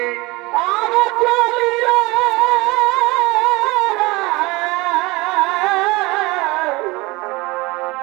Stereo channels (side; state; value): left; quieter; 22.8 dB